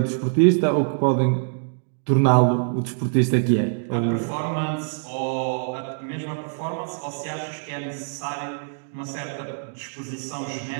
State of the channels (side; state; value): left; silent; digital silence